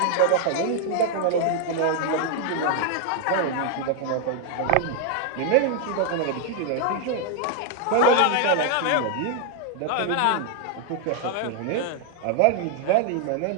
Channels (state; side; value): different; both; correlation 0.00